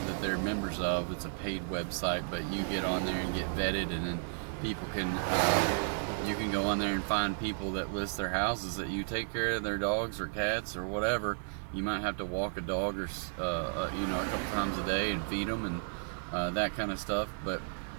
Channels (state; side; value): silent; left; digital silence